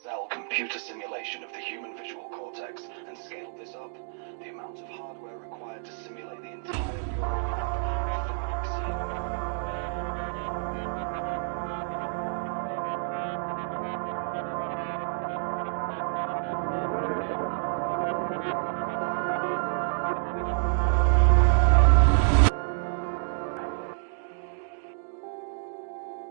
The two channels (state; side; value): silent; left; digital silence